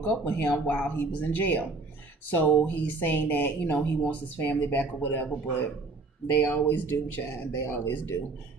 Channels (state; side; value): quieter; left; 3.6 dB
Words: up with him while he was in jail. So he's saying that, he wants his family back or whatever, but they always do, child. They always do.